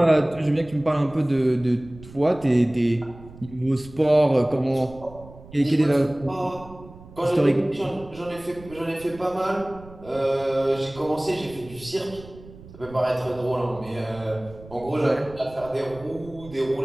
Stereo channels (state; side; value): noise; right; rumble, 19 dB below the sound